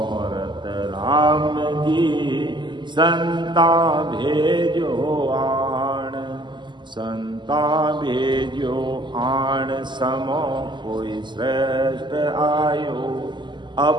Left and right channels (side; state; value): left; late; 0.22 ms